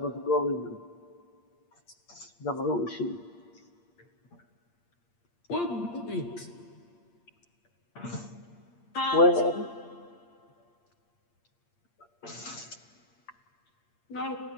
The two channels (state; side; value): late; right; 8.6 ms